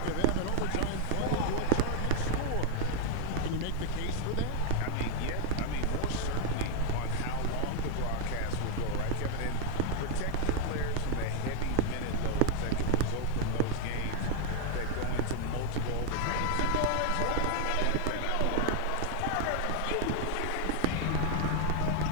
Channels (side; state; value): both; different; correlation 0.01